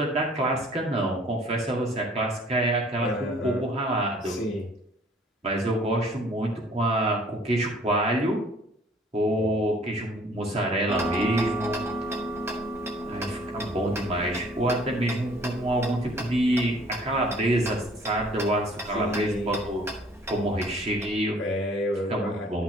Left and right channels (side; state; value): both; normal; correlation 0.56